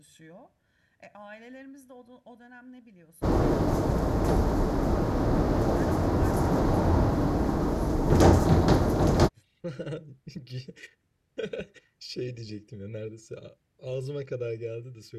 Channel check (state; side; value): identical; both; correlation 1.00